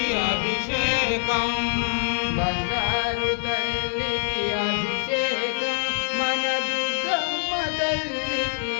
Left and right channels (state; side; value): silent; right; digital silence